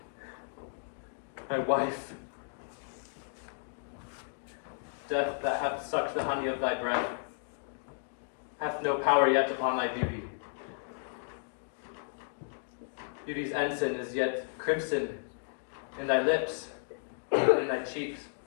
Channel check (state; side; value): silent; right; digital silence